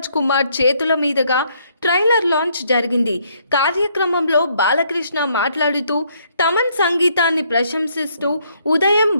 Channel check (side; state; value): both; inverted; correlation -0.69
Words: కుమార్ చేతుల మీదుగా ట్రైలర్ లాంచ్ జరిగింది. కార్యక్రమంలో బాలకృష్ణ మాట్లాడుతూ తమన్ సంగీతాన్ని ప్రశంసిస్తూ ఉదయం